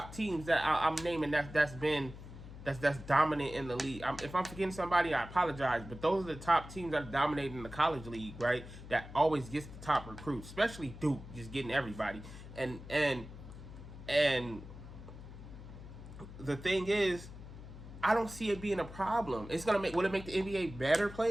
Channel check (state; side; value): noise; left; hum, 14 dB below the sound